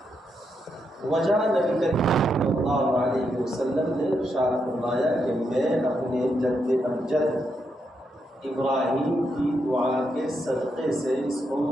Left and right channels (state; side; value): normal; both; correlation 0.81